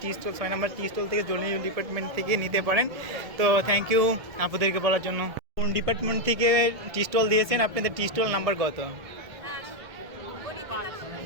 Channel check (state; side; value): late; left; 1.7 ms